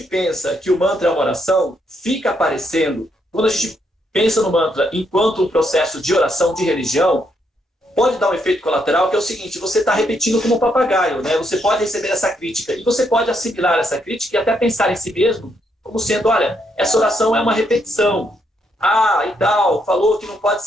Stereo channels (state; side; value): normal; both; correlation 0.76